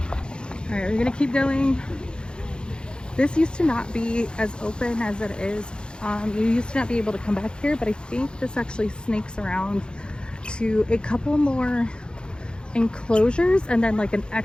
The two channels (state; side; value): late; right; 0.050 ms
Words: Alright, we're gonna keep going. This used to not be as open as it is. You used to not be able to come back here, but I think this actually snakes around to a couple more enclosures and then like an